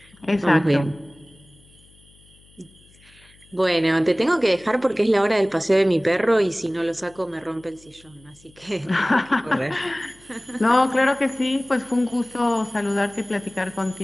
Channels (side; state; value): left; noise; hum, 28 dB below the sound